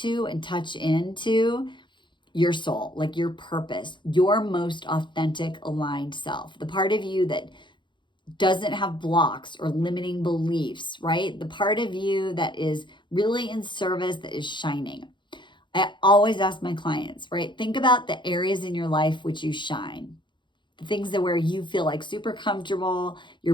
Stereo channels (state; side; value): late; right; 0.23 ms